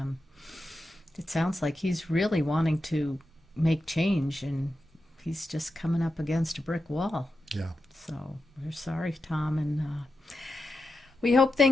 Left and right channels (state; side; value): normal; both; correlation 0.90